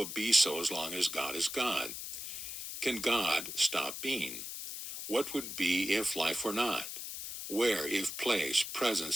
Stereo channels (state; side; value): noise; left; hiss, 7 dB below the sound